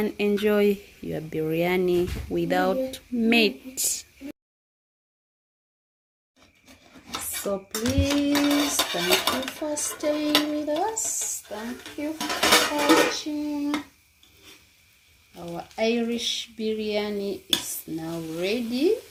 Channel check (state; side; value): identical; both; correlation 1.00